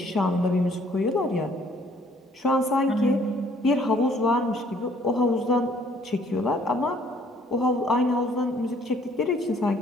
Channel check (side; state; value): both; normal; correlation 0.61